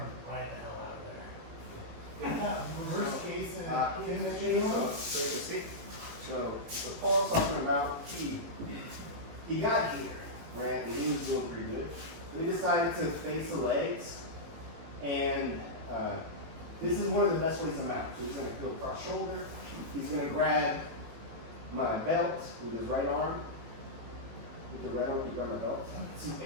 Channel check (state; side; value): late; left; 18 ms